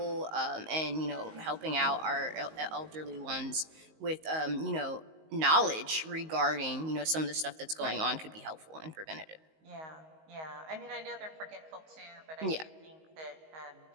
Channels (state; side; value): late; left; 19 ms